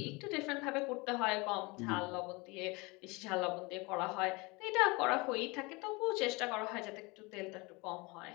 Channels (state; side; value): quieter; right; 25.8 dB